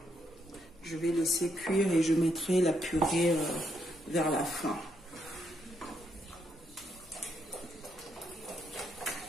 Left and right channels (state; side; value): normal; both; correlation 0.77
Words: Je vais laisser cuire et je mettrai la purée vers la fin.